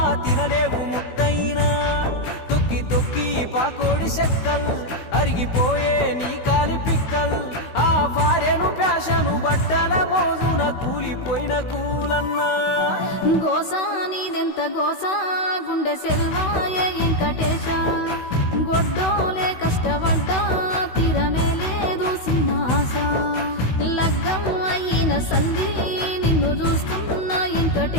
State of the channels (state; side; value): late; right; 16 ms